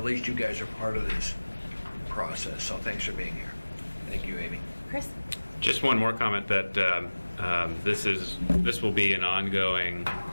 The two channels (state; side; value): inverted; both; correlation -1.00